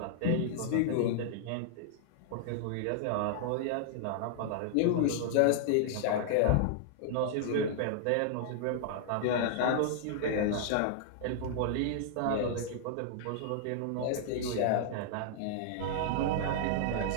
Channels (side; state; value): both; different; correlation -0.01